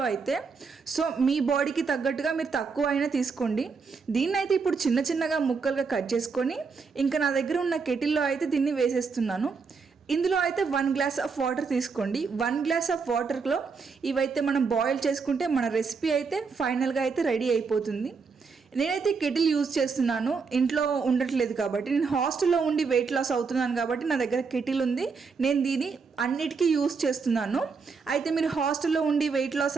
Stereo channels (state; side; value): quieter; left; 5.0 dB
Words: అయితే. సో మీ బాడీకి తగ్గట్టుగా మీరు తక్కువ అయినా తీసుకోండి. దీన్ని అయితే ఇప్పుడు చిన్న చిన్నగా ముక్కలుగా కట్ చేసుకొని ఇంకా నా దగ్గర ఉన్న కెటిల్లో అయితే దీన్ని వేసేస్తున్నాను. ఇందులో అయితే 1 గ్లాస్ ఆఫ్ వాటర్ తీసుకోండి. 1 గ్లాస్ ఆఫ్ వాటర్లో ఇవైతే మనం బాయిల్ చేసుకుంటే మన రెసిపీ అయితే ఫైనల్గా అయితే రెడీ అయిపోతుంది. నేనైతే కెటిల్ యూజ్ చేస్తున్నాను, ఇంట్లో ఉండట్లేదు కాబట్టి. నేను హాస్టల్లో ఉండి వెయిట్ లాస్ అవుతున్నాను కాబట్టి నా దగ్గర కెటిల్ ఉంది. నేను దీన్ని అన్నిటికీ యూజ్ చేస్తున్నాను. అయితే మీరు హాస్టల్లో ఉండి వెయిట్